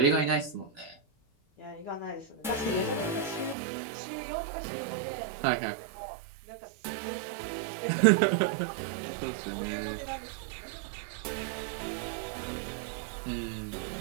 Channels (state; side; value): drops out; left; at 3.6 s